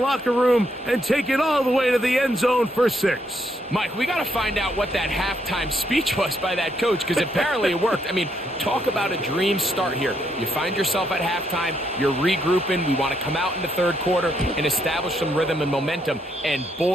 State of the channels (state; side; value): normal; both; correlation 0.75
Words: room and take it all the way to the end zone for 6. Mike, we got to find out what that halftime speech was by that coach, because apparently it worked. I mean, talk about a dream start here. You find yourself at halftime, you're regrouping, we want to come out in the third quarter and establish some rhythm and momentum. And